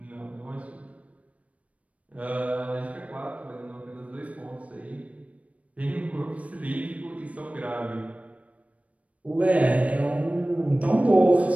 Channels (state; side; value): late; left; 0.066 ms